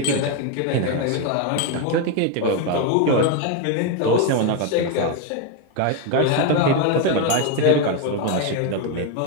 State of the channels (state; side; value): different; both; correlation 0.02